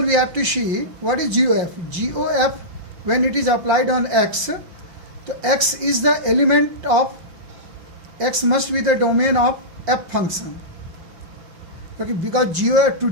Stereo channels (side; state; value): left; late; 5.7 ms